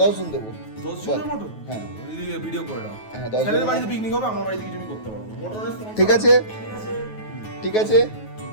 10 জন দেবো। 10 জনের মতো? হ্যাঁ, ভিডিও করে দাও। হ্যাঁ 10 ছেলের জন। বাড়িতে পিকনিক হবে, আমার বাড়িতে কিছু করতে পারবো। ঠিক আছে, ঠিক আছে।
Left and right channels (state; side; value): late; right; 9.3 ms